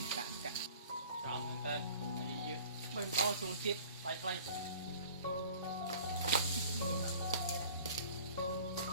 cạnh xong bên tên dưới bên đó xuống chết bay bay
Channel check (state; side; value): inverted; both; correlation -0.46